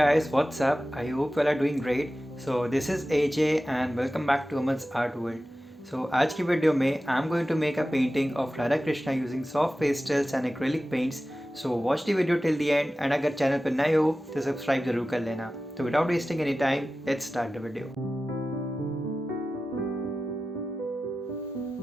what's up? I hope you all are doing great. So this is AJ and welcome back to Aman's Art World. So आज की video में I'm going to make a painting of Radha Krishna using soft pastels and acrylic paints. So watch the video till the end and अगर channel पर नए हो तो subscribe जरूर कर लेना. So without wasting any time, let's start the video.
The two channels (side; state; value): both; normal; correlation 0.94